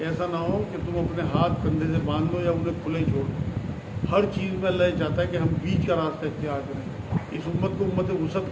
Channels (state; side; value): identical; both; correlation 1.00